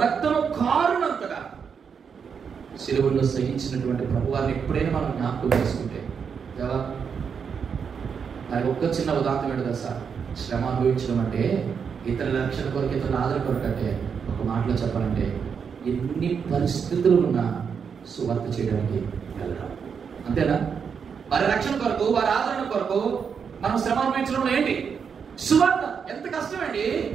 రక్తము కారునంతగా సిలువలో సహించినటువంటి ప్రభు వారిని ఎప్పుడైనా మనం జ్ఞాపకం చేసుకుంటే, దేవా నాకు ఒక్క చిన్న ఉదాహరణ ఏంటో సార్, శ్రమ అనుభవించడం అంటే ఇతరుల రక్షణ కొరకు, ఇతరుల ఆదరణ కొరకు అంటే ఒక మాటలో చెప్పాలంటే ఎన్ని పరిస్థితులు ఉన్నా సువార్త చేయడానికి వెళ్ళడం. అంతేనా? వారి రక్షణ కొరకు, వారి ఆదరణ కొరకు మనం శ్రమ అనుభవించడం ఏంటి? సువార్త ఎంత కష్టం అండి!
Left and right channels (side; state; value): left; quieter; 6.6 dB